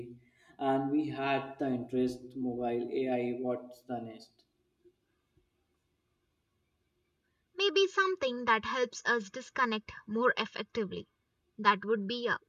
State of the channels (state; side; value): identical; both; correlation 1.00